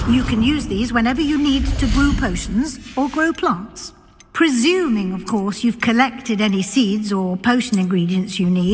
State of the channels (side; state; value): both; identical; correlation 1.00